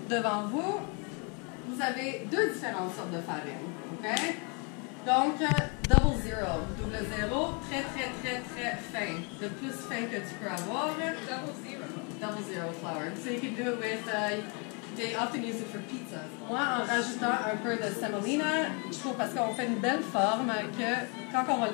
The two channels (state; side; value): quieter; right; 34.5 dB